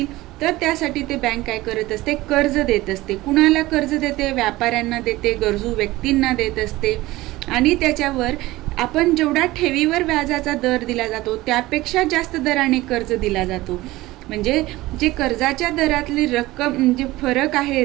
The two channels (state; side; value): quieter; left; 18.5 dB